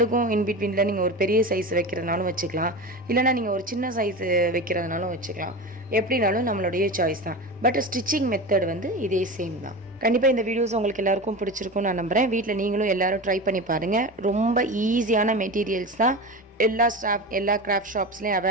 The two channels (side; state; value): both; normal; correlation 0.27